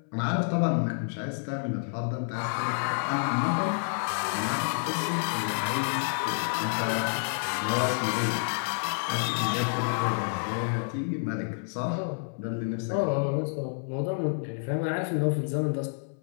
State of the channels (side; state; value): right; silent; 58 dB below the other